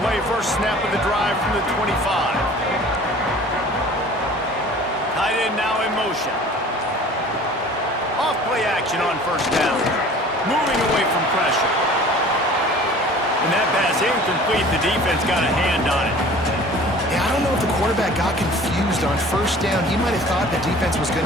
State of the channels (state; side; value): normal; both; correlation 0.46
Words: play first snap of the drive from the 25. Tight end now in motion. Off play action on first down. Moving away from pressure. And that pass incomplete. The defense got a hand on it. Yeah, I don't know if the quarterback got confused on first down. He might have thought the defense was going